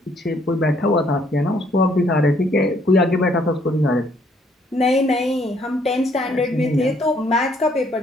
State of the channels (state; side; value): normal; both; correlation 0.66